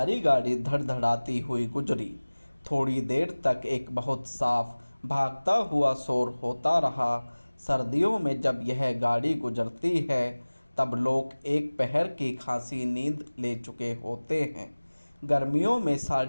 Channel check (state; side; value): inverted; both; correlation -1.00